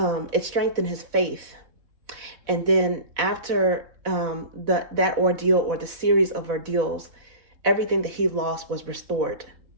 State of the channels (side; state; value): left; late; 4.0 ms